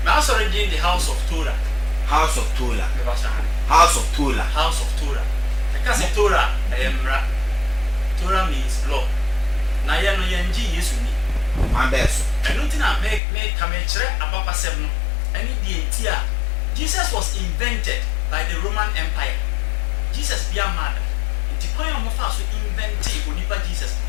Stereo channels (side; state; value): right; drops out; at 13.2 s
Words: me aso read in the house of Torah. House of Torah. House of Torah. Because Torah, Torah means law. Na ya no yenji Yesu ni. Ambeso. I don't think I make come about pasem no. Any the Jesus was invented by the Roman Empire. Jesus be a man. Nti kwan mo fa so invent onipa Jesus.